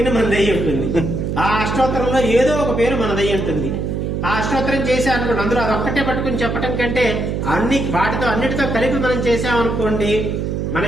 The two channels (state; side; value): noise; right; hum, 2 dB below the sound